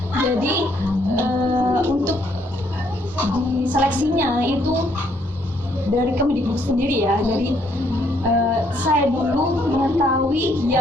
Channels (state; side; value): normal; both; correlation 0.69